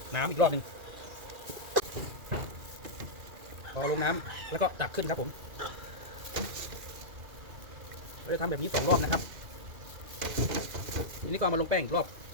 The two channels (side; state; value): left; late; 2.4 ms